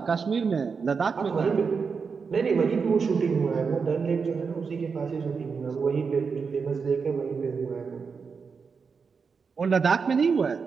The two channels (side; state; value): left; quieter; 5.4 dB